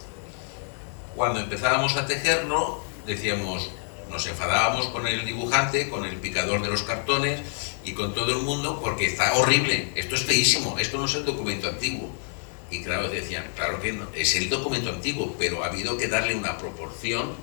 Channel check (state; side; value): silent; right; 60 dB below the other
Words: Cuando empezábamos a tejerlo, decíamos, nos enfadábamos con el dibujante, con el picador de los cartones y con todo el mundo, porque está horrible, esto es feísimo, esto no es el documento antiguo. Y claro, decían, claro que no, es el documento antiguo, pero ha habido que darle una proporción